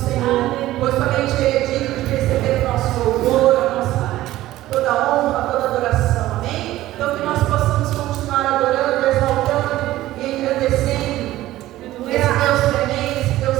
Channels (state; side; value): quieter; left; 15.5 dB